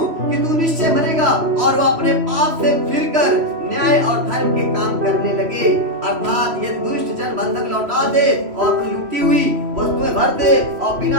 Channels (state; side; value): late; left; 3.0 ms